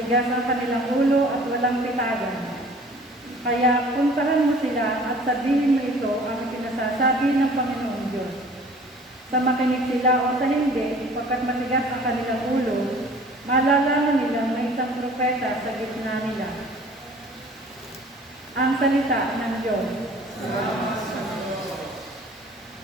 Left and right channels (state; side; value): normal; both; correlation 0.49